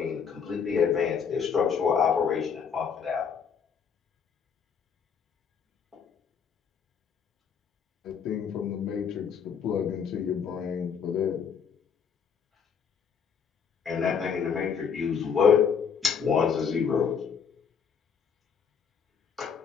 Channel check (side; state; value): right; quieter; 6.8 dB